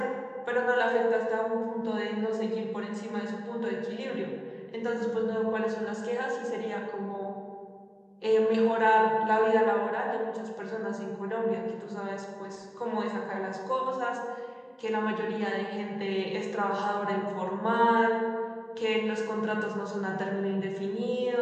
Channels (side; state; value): both; identical; correlation 1.00